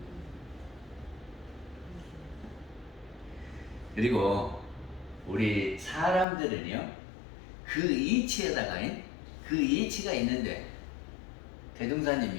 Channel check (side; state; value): right; drops out; at 6.2 s